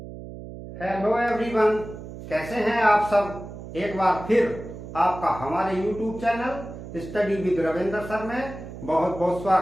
हेलो एवरीवन, कैसे हैं आप सब। एक बार फिर आपका हमारे YouTube channel study with Ravindra sir में बहुत बहुत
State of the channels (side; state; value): right; noise; hum, 12 dB below the sound